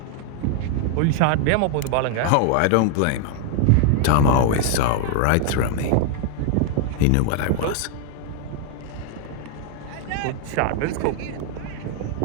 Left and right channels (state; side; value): different; both; correlation 0.00